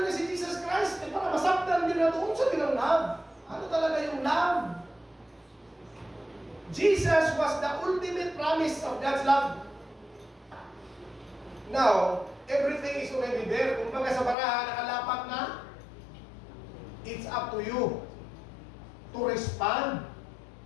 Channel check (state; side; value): drops out; right; at 14.4 s